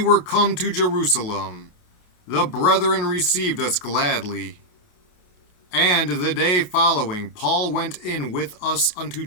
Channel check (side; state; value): right; late; 28 ms